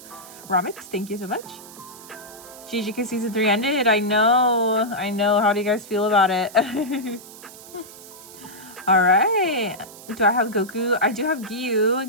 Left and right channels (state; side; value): noise; right; hiss, 18 dB below the sound